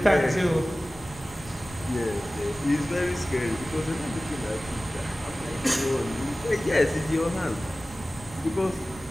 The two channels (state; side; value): normal; both; correlation 0.97